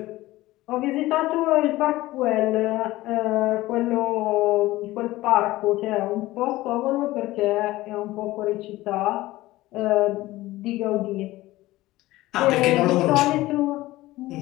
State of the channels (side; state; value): right; quieter; 17.7 dB